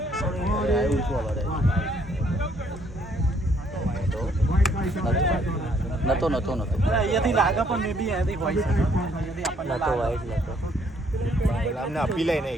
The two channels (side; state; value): both; normal; correlation 0.66